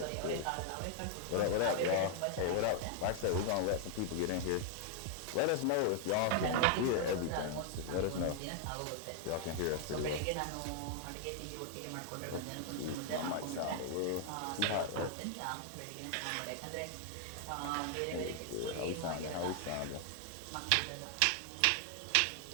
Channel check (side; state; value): both; different; correlation 0.00